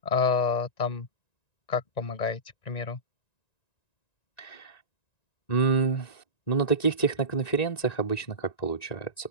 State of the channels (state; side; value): late; right; 1.9 ms